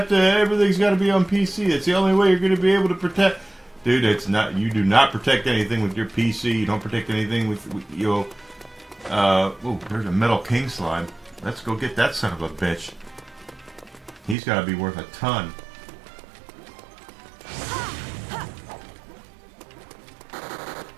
to. Everything's got to be on PC. It's the only way you're going to be able to protect." Dude, it's not. You do not protect anything with your PC. You don't protect anything with your. Oh, there's a Metal King slime. Let's go get that son of a bitch. He's got to be worth a ton.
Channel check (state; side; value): drops out; left; at 14.4 s